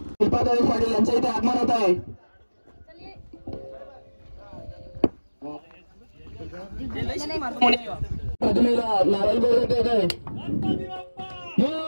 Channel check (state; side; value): inverted; both; correlation -1.00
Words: पाटील यांच्या इथे आगमन होत आहे.